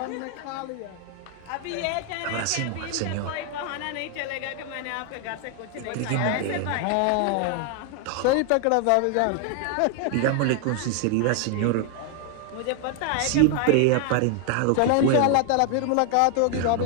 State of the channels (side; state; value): both; different; correlation 0.00